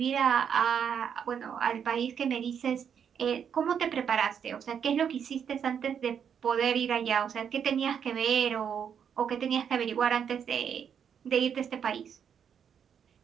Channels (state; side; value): quieter; left; 7.8 dB